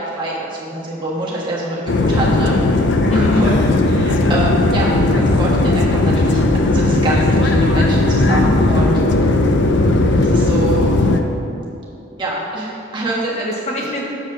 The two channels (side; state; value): both; normal; correlation 0.58